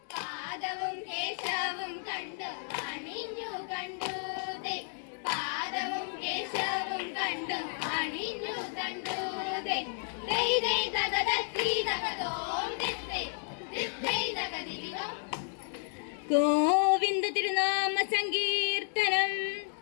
പാദവും കേശവും കണ്ടു അണിഞ്ഞു കണ്ടു പാദവും കേശവും കണ്ടു അണിഞ്ഞു കണ്ടു ഗോവിന്ദ തിരുനാമ സങ്കീർത്തനം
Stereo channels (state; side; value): silent; right; 56 dB below the other